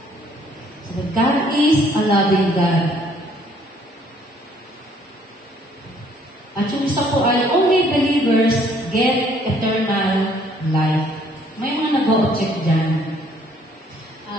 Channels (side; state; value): both; normal; correlation 0.62